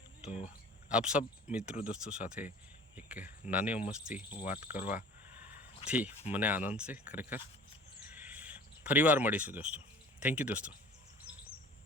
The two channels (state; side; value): normal; both; correlation 0.44